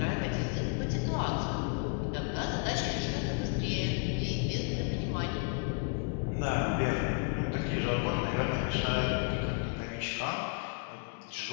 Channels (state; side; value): quieter; right; 38.4 dB